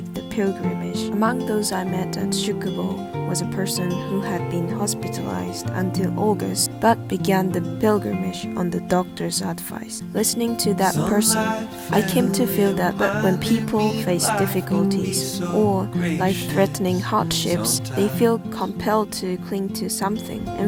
the pilgrimage. Among those I met at Shukubo was a person who had been hospitalized until August but began the pilgrimage on the doctor's advice. Listening to that person, I came to feel that when people face difficulties or life-threatening hardships, they feel compelled to cling to something.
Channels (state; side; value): identical; both; correlation 1.00